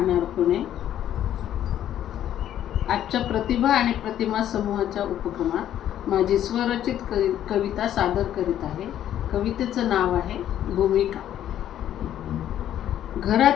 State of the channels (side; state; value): right; quieter; 11.2 dB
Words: पुणे. आजच्या प्रतिभा आणि प्रतिमा समूहाच्या उपक्रमात माझी स्वरचित कविता सादर करीत आहे. कवितेचं नाव आहे भूमिका.